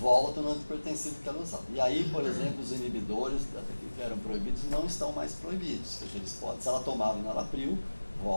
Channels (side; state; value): both; inverted; correlation -1.00